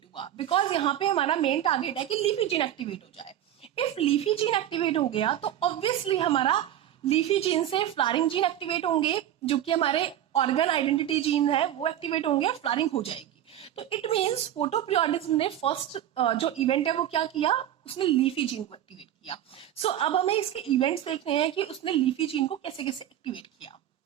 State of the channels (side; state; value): left; quieter; 11.5 dB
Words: हुआ, बिकॉज यहाँ पे हमारा मेन टारगेट है कि लीफी जीन एक्टिवेट हो जाए। इफ लीफी जीन एक्टिवेट हो गया तो ऑब्वियसली हमारा लीफी जीन से फ्लावरिंग जीन एक्टिवेट होंगे, जो कि हमारे ऑर्गन आइडेंटिटी जीन है वो एक्टिवेट होंगे और फ्लावरिंग हो जाएगी। तो इट मीन्स फोटोपीरियोडिज्म ने फर्स्ट जो इवेंट है वो क्या किया, उसने लीफी जीन को एक्टिवेट किया। सो अब हमें इसके इवेंट्स देख रहे हैं कि उसने लीफी जीन को कैसे कैसे एक्टिवेट किया।